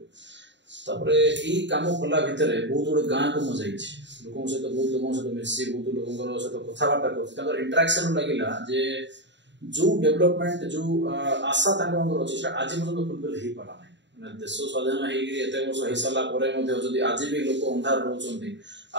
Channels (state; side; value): late; left; 0.52 ms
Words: तापर ई काम कला भितरे बहुत जोड़े गां को म जाई छी लोगों से तो बहुत लोगों से तो मिसी बहुत लोगों से तो कथा बार्ता करथि ताकर इंटरेक्शन लागिला जे जो डेवलपमेंट जो आशा तांकर अछि से आज पर्यंत फुलफिल हे पाला नै माने देश स्वाधीन हे गिरी एते वर्ष हे साला परे मध्ये जदी आज भी लोक अंधार रहउछन्ती